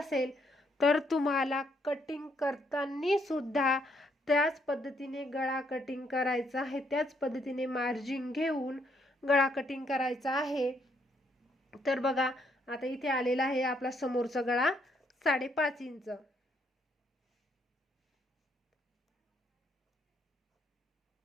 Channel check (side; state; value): both; normal; correlation 0.73